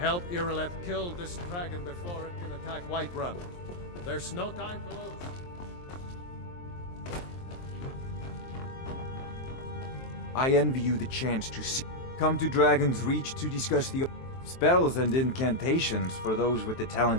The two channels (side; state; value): right; late; 23 ms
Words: Irileth kill this dragon before it can attack Whiterun. There's no time to lose. I envy you the chance to see. Come to Dragon's Reach to discuss the spells and incantations for those with the